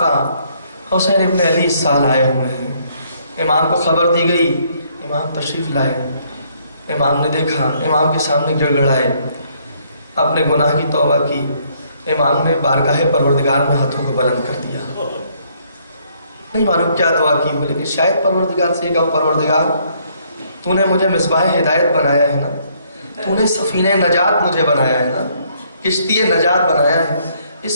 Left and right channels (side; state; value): both; inverted; correlation -0.67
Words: حسین ابن علی اس سال آئے ہوئے ہیں. امام کو خبر دی گئی, امام تشریف لائے. امام نے دیکھا, امام کے سامنے گڑگڑائے, اپنے گناہ کی توبہ کی. امام نے بارگاہ پروردگار میں ہاتھوں کو بلند کر دیا. نہیں معلوم کیا دعا کی, بولے کہ شاید پروردگار سے کہو پروردگار تو نے مجھے مصباح ہدایت بنایا ہے نا, تو نے سفینہ نجات مجھے بنایا ہے نا, کشتی نجات بنایا ہے.